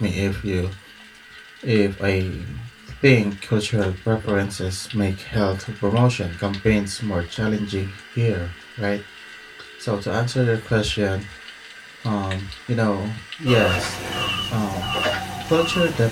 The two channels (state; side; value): identical; both; correlation 1.00